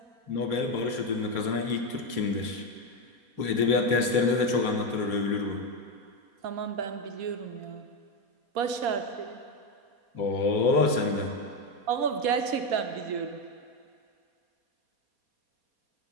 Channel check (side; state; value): left; late; 4.2 ms